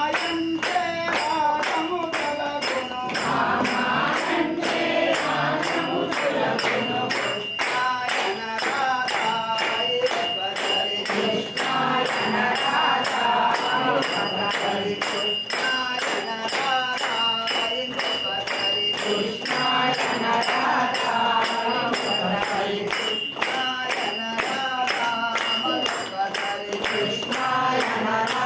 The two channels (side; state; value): both; identical; correlation 1.00